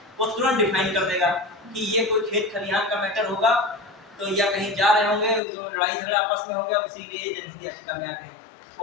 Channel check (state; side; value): drops out; right; at 5.4 s